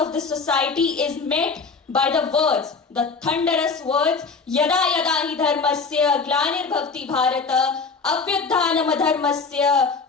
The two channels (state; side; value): quieter; right; 4.7 dB